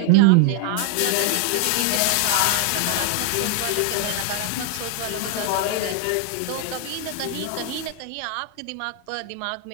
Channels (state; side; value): different; both; correlation 0.01